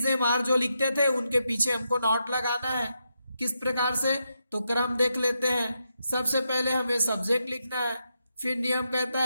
एम आर जो लिखते थे उनके पीछे हमको नॉट लगाना है, किस प्रकार से, तो क्रम देख लेते हैं। सबसे पहले हमें सब्जेक्ट लिखना है, फिर नियम कहता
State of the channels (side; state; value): both; inverted; correlation -0.84